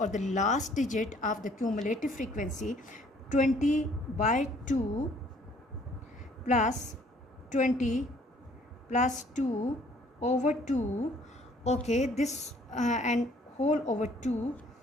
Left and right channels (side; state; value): both; normal; correlation 0.60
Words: the last digit of the cumulative frequency, 20 by 2 plus 20 plus 2 over 2. Okay, this and whole over 2,